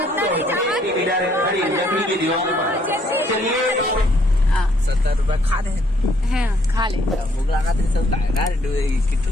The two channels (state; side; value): normal; both; correlation 0.67